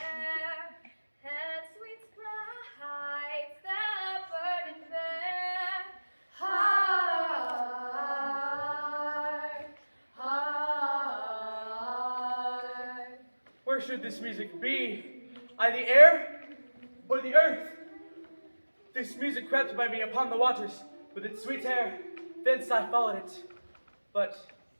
and sweet sprites that burden there. Heart, heart. Where should this music be? I the air or the earth? This music crept by me upon the waters with its sweet air. Thence I followed it, but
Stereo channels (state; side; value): inverted; both; correlation -1.00